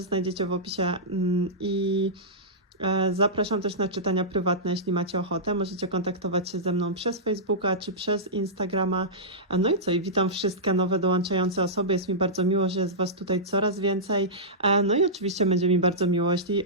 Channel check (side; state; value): both; normal; correlation -0.14